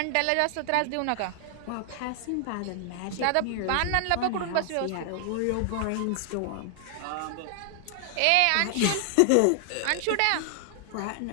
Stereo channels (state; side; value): different; both; correlation 0.00